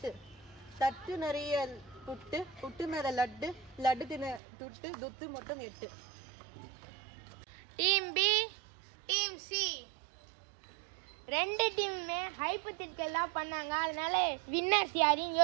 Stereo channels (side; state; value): left; drops out; at 4.4 s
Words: தட்டு நிறைய புட்டு, புட்டு மேலே லட்டு, லட்டு தின்ன துட்டு, துட்டு மொத்தம் 8. Team B team C. ரெண்டு டீமுமே ஹைப்போதெட்டிக்கல் பண்ணாங்க, அதனால வின்னர்ஸ் யாரையும்